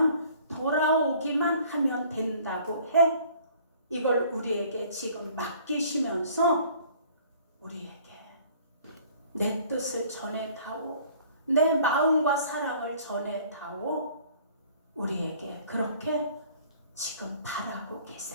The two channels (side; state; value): both; inverted; correlation -0.54